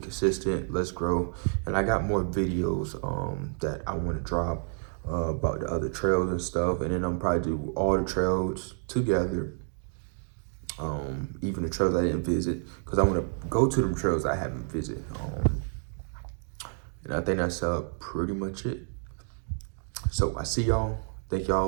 Let's grow. And I got more videos that I want to drop about the other trails and stuff. And then I'm probably do all the trails together. Even the trails I didn't visit. Because I want to go to them trails I haven't visited. And I think that's pretty much it. So I see y'all. Thank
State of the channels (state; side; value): silent; left; 58 dB below the other